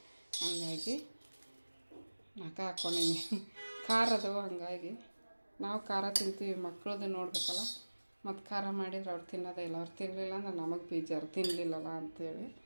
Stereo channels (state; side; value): inverted; both; correlation -1.00